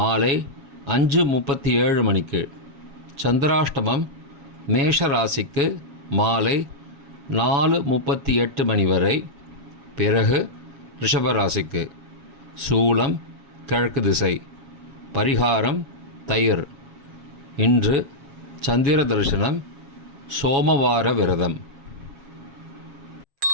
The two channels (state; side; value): late; left; 7.3 ms